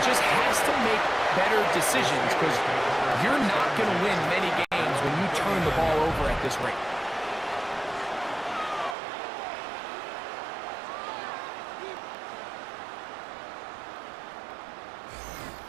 just has to make better decisions because you're not going to win many games when you turn the ball over at this rate.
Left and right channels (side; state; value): left; drops out; at 9.0 s